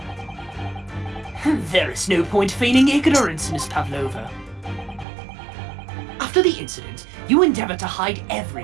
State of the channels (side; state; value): left; drops out; at 5.1 s